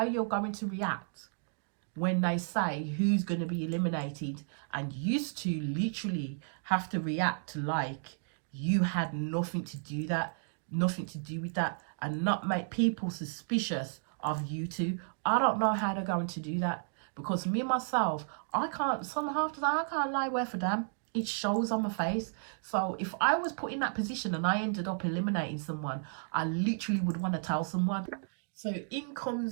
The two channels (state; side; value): silent; left; digital silence